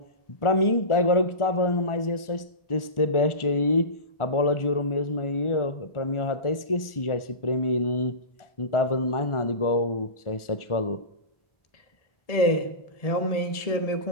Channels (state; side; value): late; right; 1.4 ms